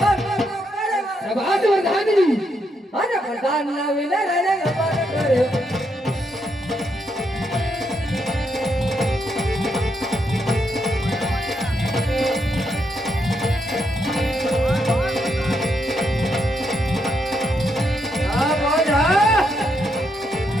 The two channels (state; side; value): normal; both; correlation 0.79